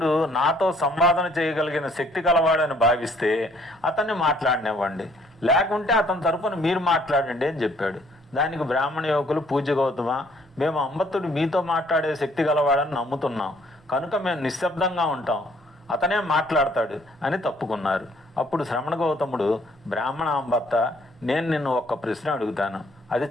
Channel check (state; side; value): normal; both; correlation 0.63